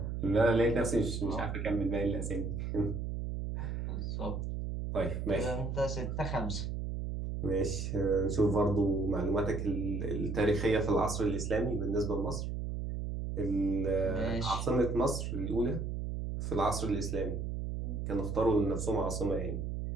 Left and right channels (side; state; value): right; noise; hum, 3 dB below the sound